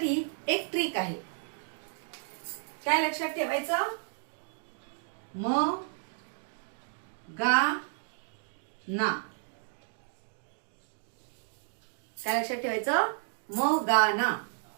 एक ट्रिक आहे. काय लक्षात ठेवायचं? म गा ना. काय लक्षात ठेवायचं? म गा ना.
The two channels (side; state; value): left; silent; digital silence